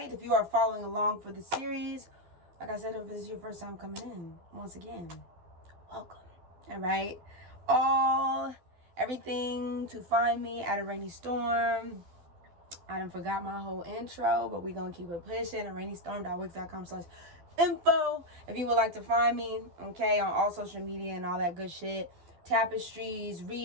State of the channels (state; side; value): late; left; 12 ms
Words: If you are following along for the series, like I said, if this is your first time coming in, once again, welcome. Alright? Everything to find me at Araneae Storm. I done forgot my whole intro, but we gonna keep it pushing. araneaestorm.wix.com/info. If you would like to find me, okay, on all social media and all that good shit. Tapestries,